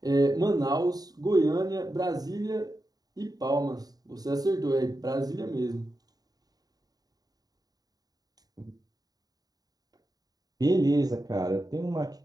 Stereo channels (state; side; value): late; left; 0.18 ms